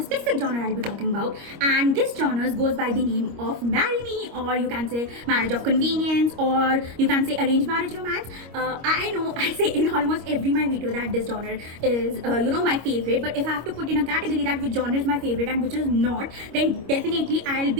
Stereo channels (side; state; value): left; late; 25 ms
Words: genre I'll be talking about, and this genre goes by the name of Marry Me, or you can say Marriage of Convenience, or you can say Arranged Marriage Romance. I know I say in almost every my video that this genre is my favorite, but if I have to put in a category that which genre is my favorite and which is not, then definitely I'll